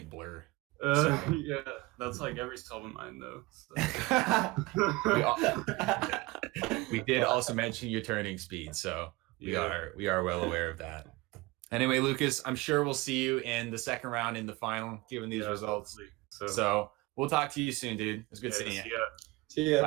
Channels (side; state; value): left; quieter; 22.0 dB